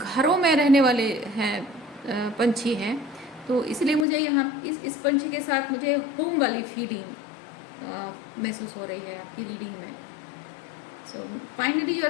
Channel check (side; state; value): right; drops out; at 4.0 s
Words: में रहने वाले हैं, पंछी हैं, तो इसलिए मुझे यहाँ इस पंछी के साथ मुझे होम वाली फीलिंग महसूस हो रही है आपकी रीडिंग में। So finally you